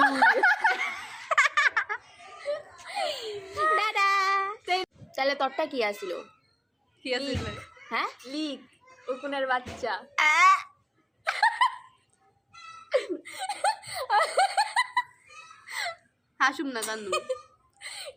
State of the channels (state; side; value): identical; both; correlation 1.00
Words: দাদা তাহলে তোরটা কি আসিল কি আছিল? হ্যাঁ লিক উকুনের বাচ্চা হাসুম না কান্দু।